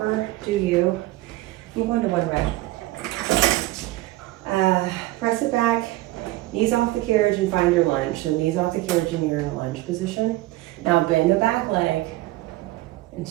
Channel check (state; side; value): quieter; left; 18.0 dB